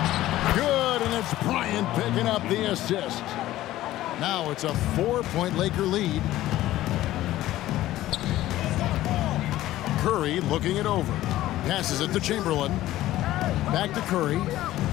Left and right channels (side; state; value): right; quieter; 15.1 dB